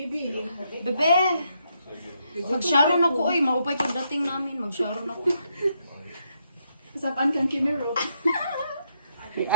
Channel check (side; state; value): both; inverted; correlation -0.76